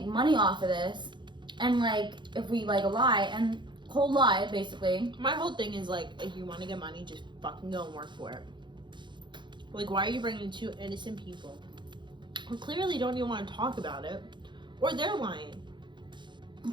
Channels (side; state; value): left; late; 0.23 ms